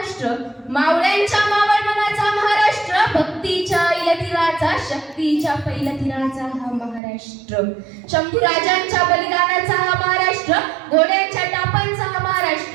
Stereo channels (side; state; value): left; drops out; at 7.0 s